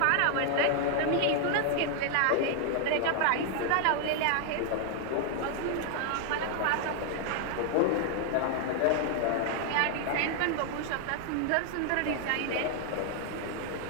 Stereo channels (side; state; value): both; different; correlation 0.00